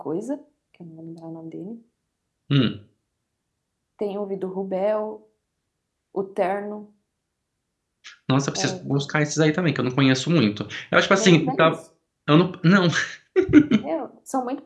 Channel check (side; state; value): both; identical; correlation 1.00